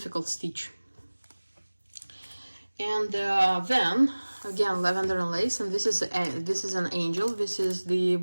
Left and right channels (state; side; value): inverted; both; correlation -1.00